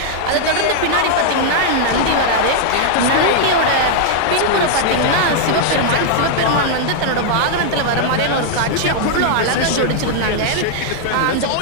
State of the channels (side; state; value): both; different; correlation -0.01